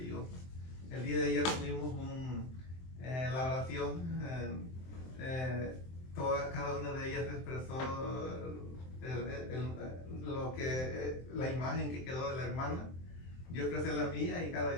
El día de ayer tuvimos la oración, cada una de ellas expresó la imagen que quedó de la hermana. Yo expresé la mía y cada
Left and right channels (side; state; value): right; late; 23 ms